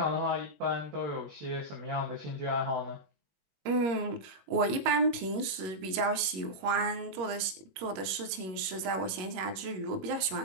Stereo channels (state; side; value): late; left; 21 ms